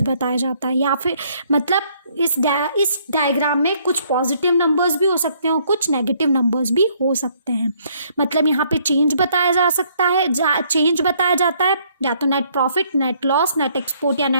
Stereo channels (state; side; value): inverted; both; correlation -0.66